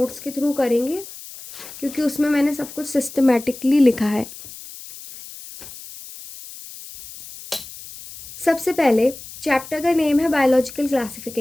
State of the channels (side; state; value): left; noise; hiss, 15 dB below the sound